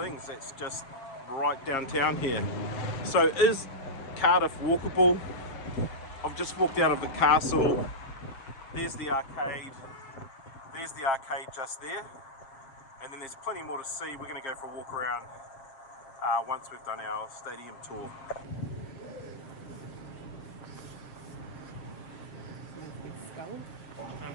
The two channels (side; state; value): right; late; 6.9 ms